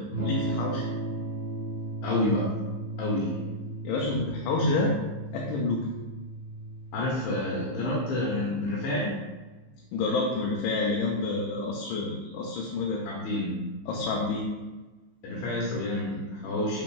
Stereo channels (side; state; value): right; late; 15 ms